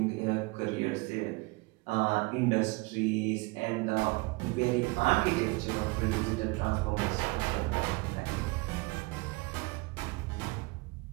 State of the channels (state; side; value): quieter; left; 25.8 dB